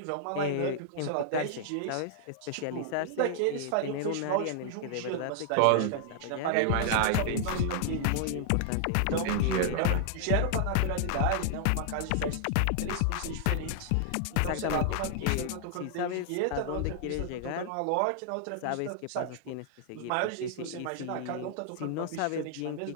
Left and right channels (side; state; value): both; different; correlation 0.00